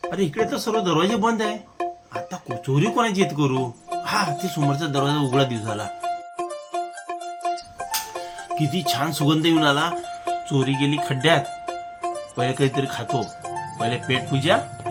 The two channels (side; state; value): both; identical; correlation 1.00